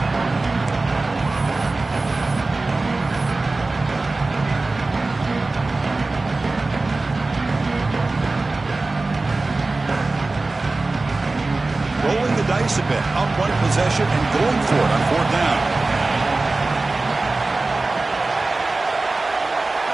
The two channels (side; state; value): left; quieter; 3.3 dB